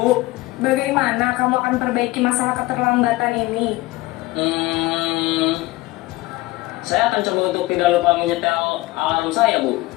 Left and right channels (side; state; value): right; quieter; 19.7 dB